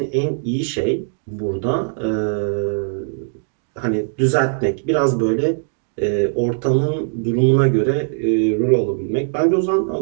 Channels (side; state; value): left; silent; digital silence